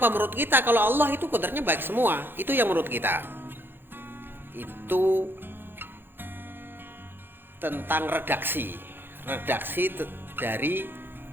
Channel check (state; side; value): late; left; 0.10 ms